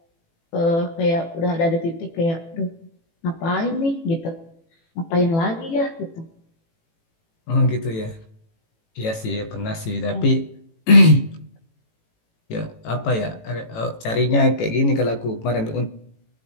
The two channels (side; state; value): right; late; 18 ms